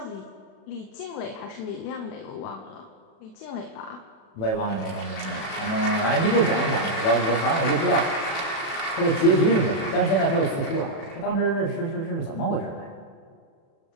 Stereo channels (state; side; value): late; right; 36 ms